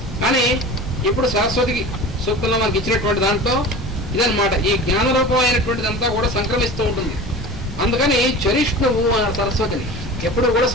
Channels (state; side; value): normal; both; correlation 0.35